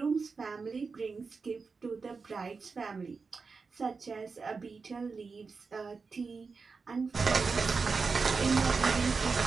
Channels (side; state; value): left; quieter; 4.7 dB